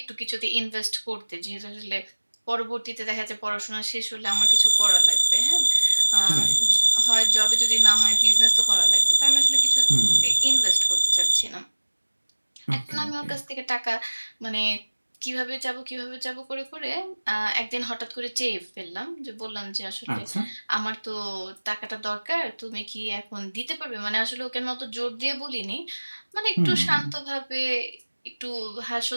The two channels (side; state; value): both; inverted; correlation -1.00